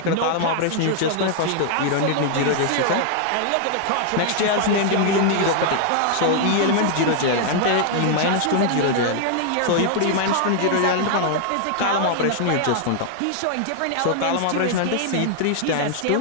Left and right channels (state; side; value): different; both; correlation 0.00